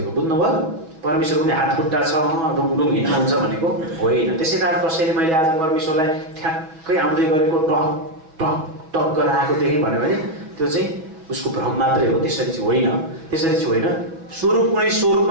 बुझ्नुभयो? परमेश्वरको पनि हात खुट्टा छ, डुङडुङ हिँड्नुहुन्छ भनेको होइन। त्यसै कारण कसैले मैले आज परमेश्वरलाई ठ्याक्कै आउँदै गरेको टक टक टक गरेर आएको देखेँ भन्यो भने त्यो चाहिँ उसको भ्रम मात्रै हो, त्यसरी चाहिँ होइन। त्यसरी चाहिँ होइन। स्वरूप कुनै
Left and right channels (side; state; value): left; late; 6.2 ms